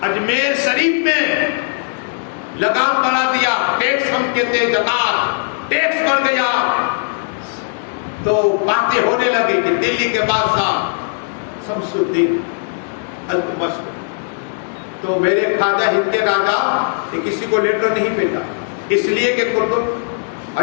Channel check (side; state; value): right; silent; digital silence